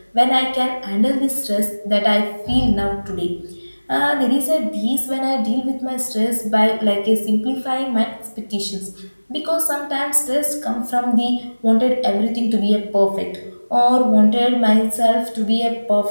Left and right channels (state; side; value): inverted; both; correlation -1.00